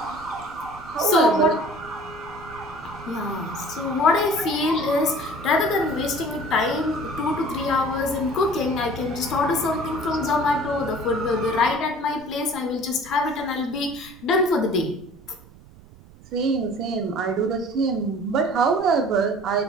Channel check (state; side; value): noise; right; rumble, 22 dB below the sound